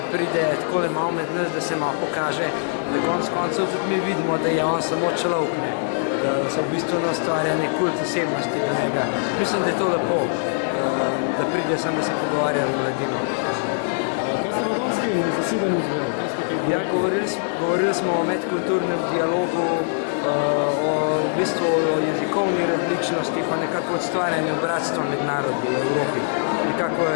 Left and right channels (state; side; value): silent; right; 64 dB below the other